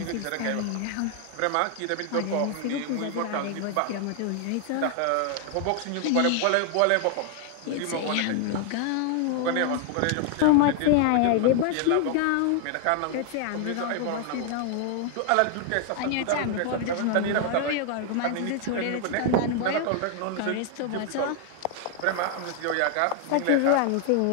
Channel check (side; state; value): both; different; correlation 0.00